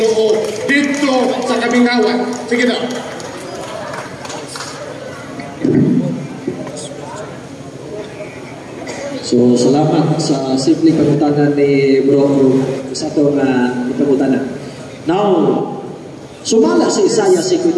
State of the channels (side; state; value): both; identical; correlation 1.00